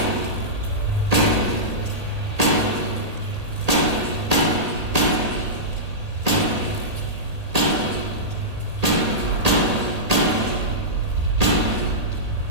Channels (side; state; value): left; late; 1.8 ms